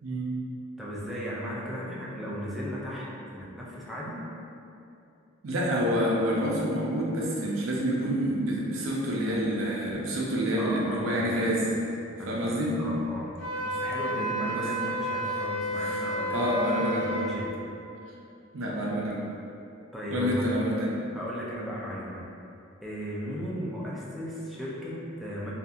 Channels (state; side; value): normal; both; correlation 0.39